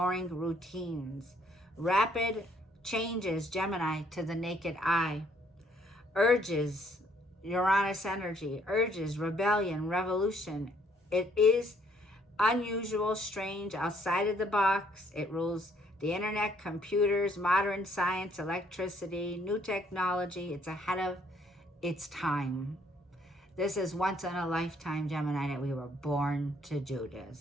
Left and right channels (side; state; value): both; normal; correlation 0.66